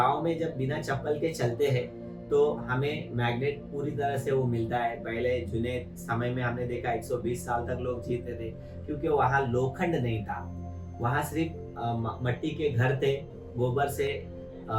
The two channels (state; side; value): identical; both; correlation 1.00